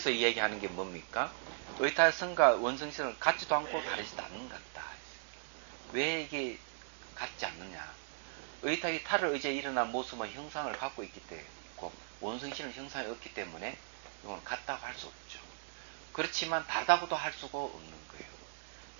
얘기하는 게 뭡니까? 의탁성과 원성실은 같지도 않고 다르지도 않는 것 같다. 왜 이게 같지 않느냐? 의탁이 탈을 의지해 일어난 모습은 형상을 갖고 있기 때문에 원성실은 형상이 없기 때문에 이건 같다고 할 수 없죠. 그렇지만 다르다고도 할 수가 없는 거예요.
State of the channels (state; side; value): silent; left; digital silence